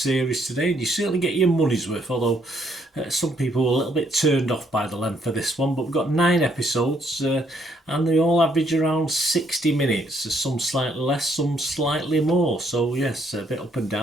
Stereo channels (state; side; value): normal; both; correlation 0.70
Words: today, and you certainly get your money's worth, although some people were a little bit turned off by the length of this one. But we've got 9 episodes, and they all average around 60 minutes, some slightly less, some slightly more. So yes, a bit up and